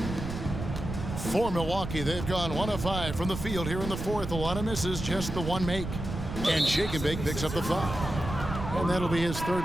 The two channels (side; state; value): right; noise; rumble, 6 dB below the sound